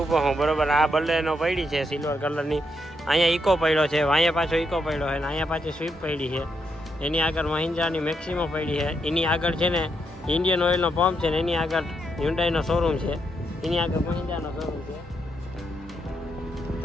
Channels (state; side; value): normal; both; correlation 0.80